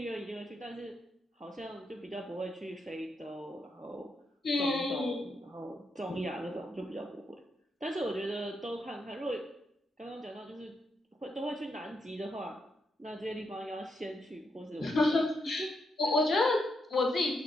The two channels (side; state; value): both; normal; correlation 0.81